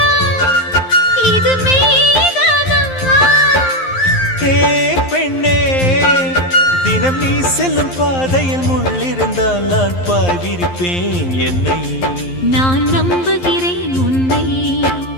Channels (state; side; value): late; right; 11 ms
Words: இது மெய்தானா? ஏ பெண்ணே தினம் நீ செல்லும் பாதையில் முள்ளிருந்தால் நான் பாய்விருப்பேன் என்னை. நான் நம்புகிறேன் உன்னை.